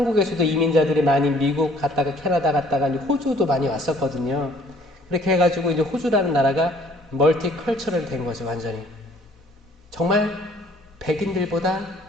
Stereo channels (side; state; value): both; normal; correlation 0.59